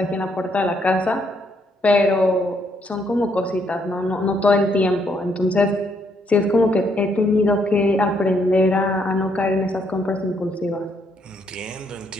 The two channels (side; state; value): both; normal; correlation 0.72